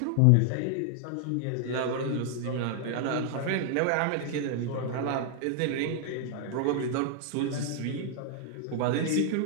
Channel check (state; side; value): different; both; correlation 0.00